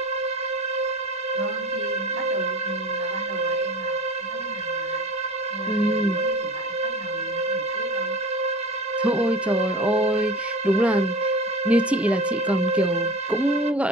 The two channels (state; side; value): normal; both; correlation 0.37